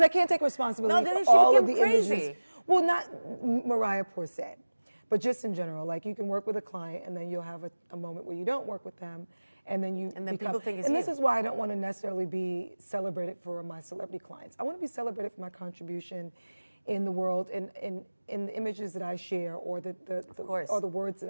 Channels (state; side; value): inverted; both; correlation -1.00